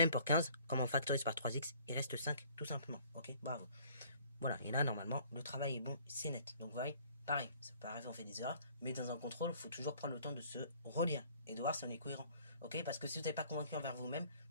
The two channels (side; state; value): both; inverted; correlation -0.55